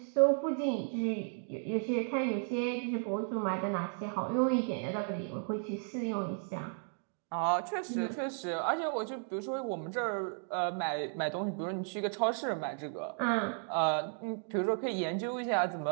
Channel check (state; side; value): silent; left; 55 dB below the other